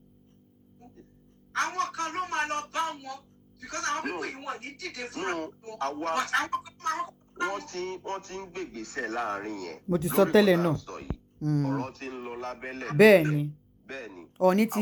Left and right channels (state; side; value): identical; both; correlation 1.00